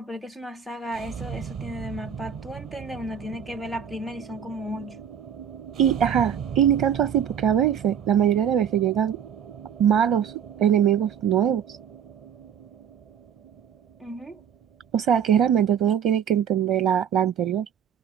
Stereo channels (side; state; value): left; quieter; 8.5 dB